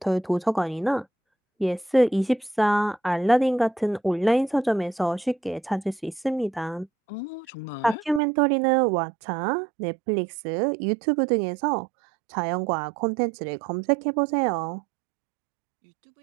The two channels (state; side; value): drops out; left; at 8.2 s